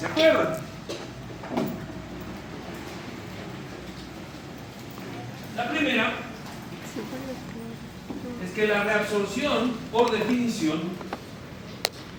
acuerdan. La primera es que la reabsorción por definición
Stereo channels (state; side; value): identical; both; correlation 1.00